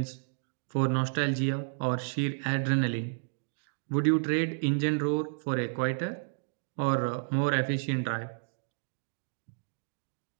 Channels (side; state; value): left; silent; digital silence